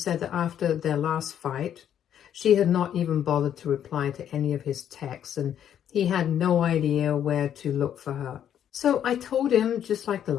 that after their last fight, she had not even bothered to reply to any of his texts, and he had no idea where to look for her. So I told him, just like the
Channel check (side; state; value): right; quieter; 9.7 dB